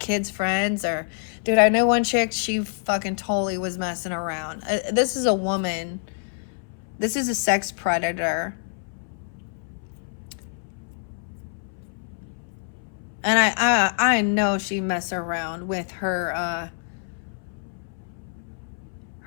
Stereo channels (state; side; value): silent; right; 61 dB below the other